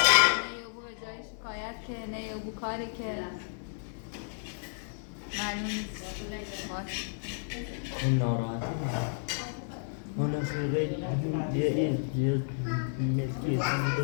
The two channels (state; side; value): silent; right; 57 dB below the other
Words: بو به جای شکایت که نه یا بو کاری که معلوم نیست باش اون ناراحتی اون خیلی یه ملکی